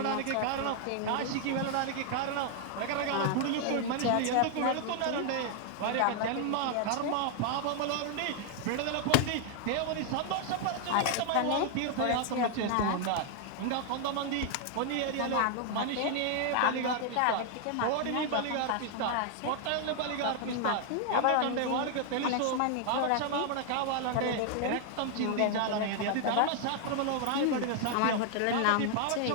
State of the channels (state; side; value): different; both; correlation 0.00